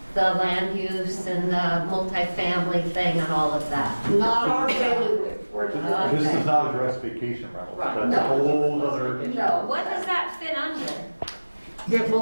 the land use and the multifamily thing and all of that. Not our bailiwick. This does not address vacation rentals. Right. That's a whole other. No. What does that fit under? It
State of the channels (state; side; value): inverted; both; correlation -1.00